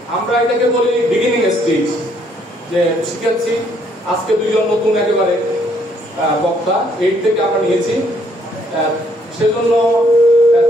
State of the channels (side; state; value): both; normal; correlation 0.68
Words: আমরা এটাকে বলি বিগিনিং স্টেজ, যে শিখাচ্ছি আজকে 2 জন নতুন একেবারে বক্তা 8 থেকে আমরা নিয়েছি। সেজন্য